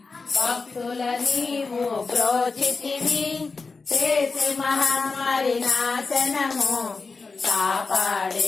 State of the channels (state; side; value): quieter; right; 4.3 dB